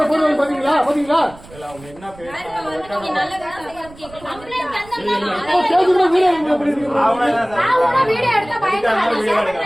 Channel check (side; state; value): right; noise; rumble, 21 dB below the sound